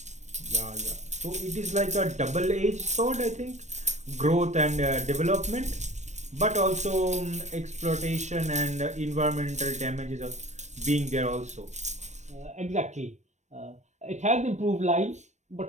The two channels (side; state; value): left; late; 0.34 ms